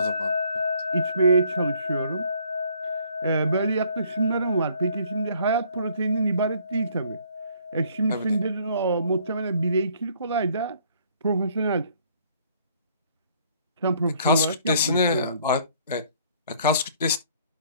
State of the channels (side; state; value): both; inverted; correlation -0.61